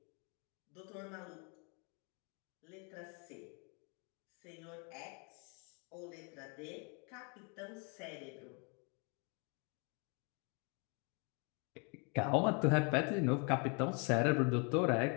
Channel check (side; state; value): right; quieter; 35.1 dB